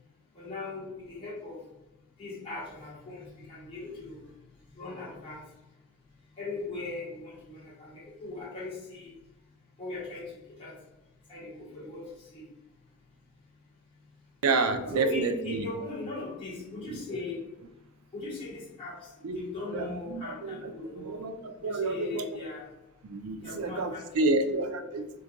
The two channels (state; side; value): normal; both; correlation 0.04